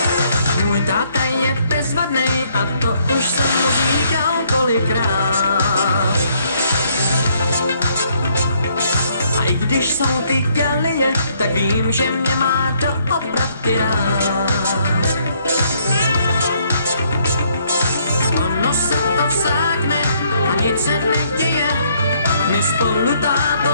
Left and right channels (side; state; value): both; inverted; correlation -0.68